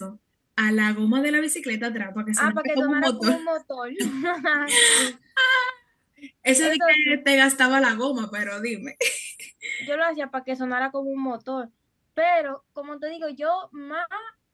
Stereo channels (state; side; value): identical; both; correlation 1.00